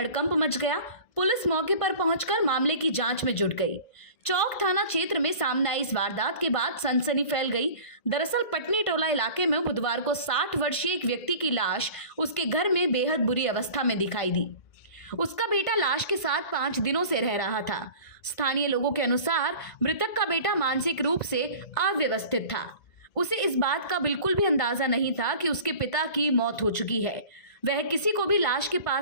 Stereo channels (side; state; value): right; late; 2.0 ms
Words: मच गया। पुलिस मौके पर पहुंचकर मामले की जांच में जुट गई। चौक थाना क्षेत्र में सामने आई इस वारदात के बाद सनसनी फैल गई। दरअसल पटनी टोला इलाके में बुधवार को 60 वर्षीय एक व्यक्ति की लाश उसके घर में बेहद बुरी अवस्था में दिखाई दी। उसका बेटा लाश के साथ 5 दिनों से रह रहा था। स्थानीय लोगों के अनुसार मृतक का बेटा मानसिक रूप से अव्यवस्थित था। उसे इस बात का बिल्कुल भी अंदाजा नहीं था कि उसके पिता की मौत हो चुकी है। वह किसी को भी लाश के